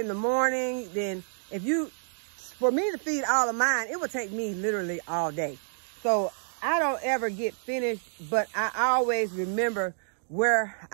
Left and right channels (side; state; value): left; silent; digital silence